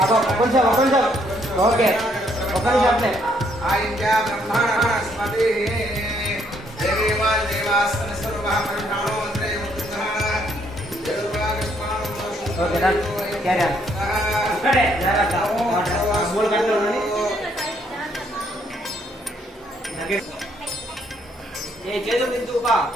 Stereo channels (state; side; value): normal; both; correlation 0.70